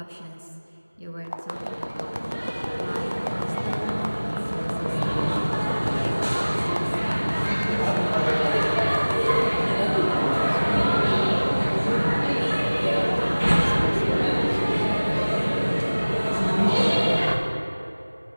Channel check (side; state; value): both; inverted; correlation -1.00